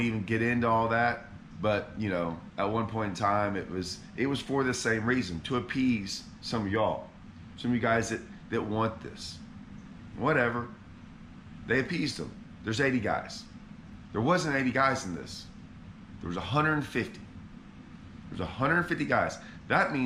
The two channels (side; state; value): both; identical; correlation 1.00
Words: even get into all that, but you know, at one point in time, it was for the same reason, to appease some of y'all, some of you guys that want this. Whatever. They appeased them. There's 80 guys. There wasn't 80 guys in this. There was 150. There's 150 guys. That